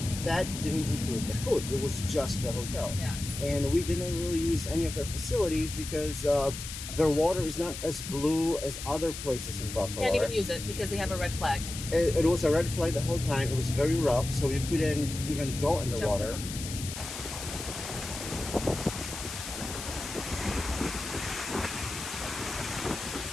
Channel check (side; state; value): left; noise; hiss, 8 dB below the sound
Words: that didn't include the food. It was just the hotel. Yes. And we didn't really use any of their facilities because their water is not as blue as other places in Bacalar. Can't even use it because they have a red flag. It was a red flag the whole time. It was very rough, so you couldn't even go in the water.